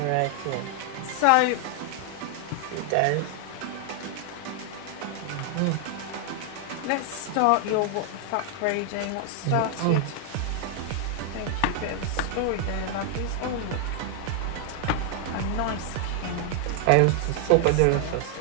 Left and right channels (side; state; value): both; different; correlation 0.00